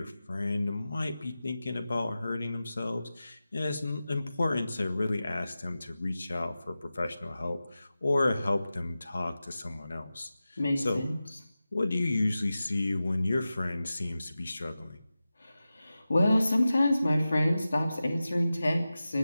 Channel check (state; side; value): inverted; both; correlation -0.94